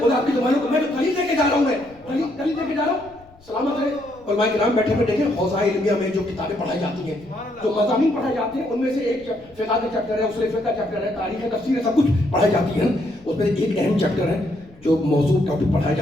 خدا آپ کی زبانوں کو, میں جو دلیل لے کے جا رہا ہوں, میں دلیل لے کے جا رہا ہوں. سلامت رہے علماء کرام بیٹھے ہوئے دیکھیں, حوزہ علمیہ میں جو کتابیں پڑھائی جاتی ہیں, جو مضامین پڑھائے جاتے ہیں, ان میں سے ایک فقہ کا چیپٹر ہے, اصول فقہ کا چیپٹر ہے, تاریخ ہے, تفسیر ہے, سب کچھ پڑھائی جاتی ہے. اس میں ایک اہم چیپٹر ہے جو موضوع ٹاپک پڑھایا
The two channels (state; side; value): noise; left; rumble, 27 dB below the sound